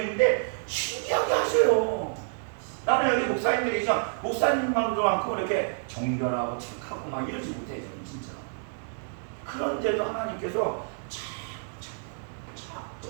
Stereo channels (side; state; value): left; silent; digital silence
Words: 신기하게 하셔요. 나는 여기 목사님들이 계시면 목사님만도 많고 이렇게 정결하고 착하고 막 이러지 못해요. 저는 진짜. 그런데도 하나님께서 참.